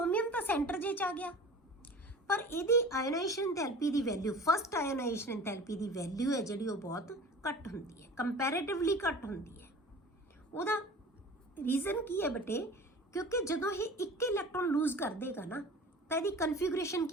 ਤਾਂ ਸੈਂਟਰ ਜੇ 'ਚ ਆ ਗਿਆ, ਪਰ ਇਹਦੀ ਆਇਨਾਈਜ਼ੇਸ਼ਨ ਐਂਥੈਲਪੀ ਦੀ ਵੈਲਿਊ, ਫਸਟ ਆਇਨਾਈਜ਼ੇਸ਼ਨ ਐਂਥੈਲਪੀ ਦੀ ਵੈਲਿਊ ਹੈ ਜਿਹੜੀ ਉਹ ਬਹੁਤ ਘੱਟ ਹੁੰਦੀ ਹੈ, ਕੰਪੈਰੇਟਿਵਲੀ ਘੱਟ ਹੁੰਦੀ ਹੈ। ਉਹਦਾ ਰੀਜ਼ਨ ਕੀ ਹੈ ਬੇਟੇ, ਕਿਉਂਕਿ ਜਦੋਂ ਇਹ ਇੱਕ ਇਲੈਕਟ੍ਰੋਨ ਲੂਜ਼ ਕਰ ਦੇਗਾ ਨਾ, ਤਾਂ ਇਹਦੀ ਕਨਫਿਗੂਰੇਸ਼ਨ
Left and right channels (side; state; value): both; normal; correlation 0.40